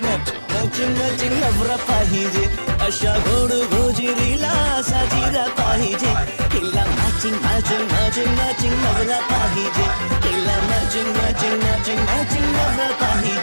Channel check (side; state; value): both; inverted; correlation -1.00